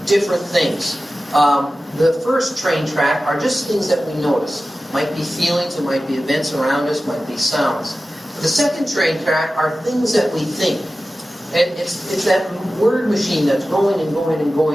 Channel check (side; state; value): both; normal; correlation 0.95